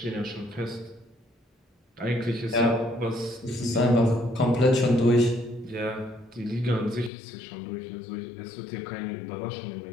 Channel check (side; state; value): right; drops out; at 7.1 s